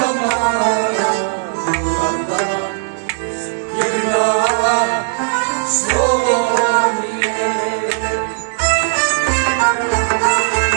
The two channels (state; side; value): silent; left; digital silence